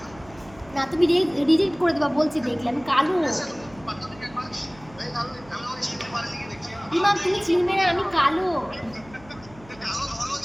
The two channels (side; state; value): right; noise; hum, 22 dB below the sound